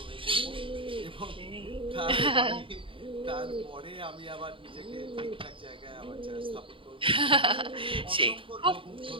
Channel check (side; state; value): left; late; 0.25 ms